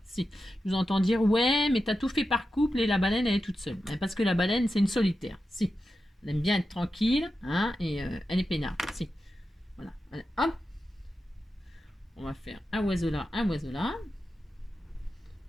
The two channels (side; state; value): both; normal; correlation 0.90